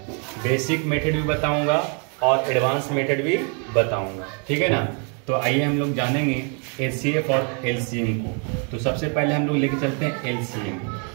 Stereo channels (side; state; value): left; quieter; 39.0 dB